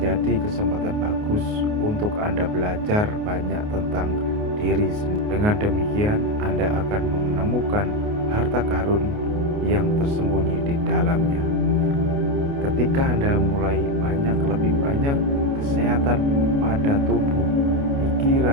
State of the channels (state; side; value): late; left; 29 ms